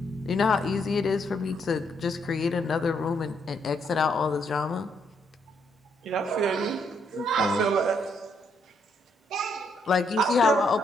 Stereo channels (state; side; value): normal; both; correlation 0.74